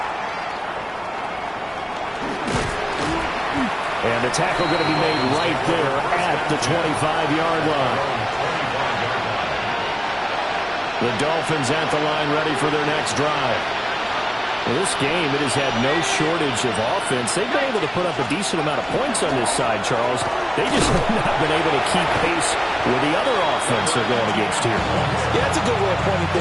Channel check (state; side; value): identical; both; correlation 1.00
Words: And the tackle going to be made right there at the 25-yard line. The Dolphins at the line ready for their next drive. Well, this game, it has had no shortage of offense. They've been able to put up a decent amount of points on this side, Charles. They just have not been able to keep pace with the other offense they're going against here. Yeah, it's a good way of pointing